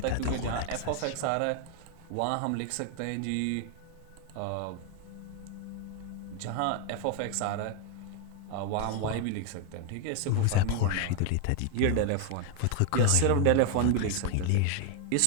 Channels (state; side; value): different; both; correlation 0.01